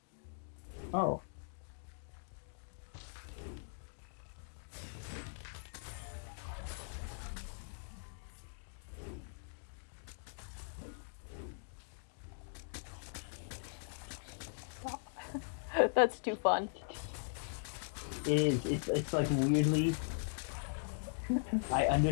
Oh. That's too fun. It is. It's like weirdly. I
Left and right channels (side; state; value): right; silent; digital silence